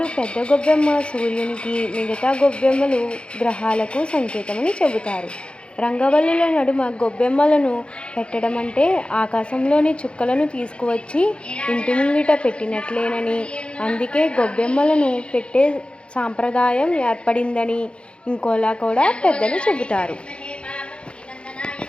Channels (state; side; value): late; right; 0.057 ms